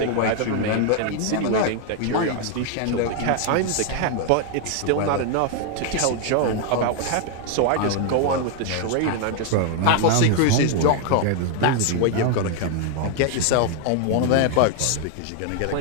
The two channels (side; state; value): both; different; correlation 0.00